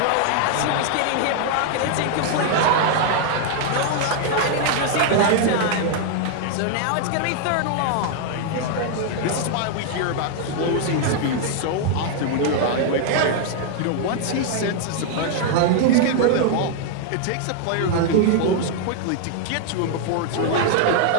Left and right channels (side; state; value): both; different; correlation 0.00